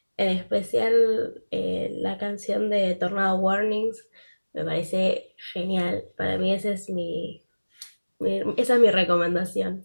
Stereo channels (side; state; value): both; inverted; correlation -1.00